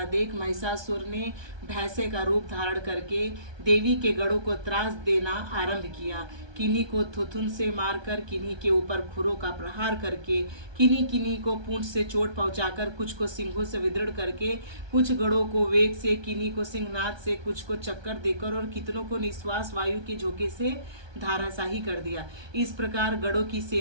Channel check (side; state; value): left; late; 1.2 ms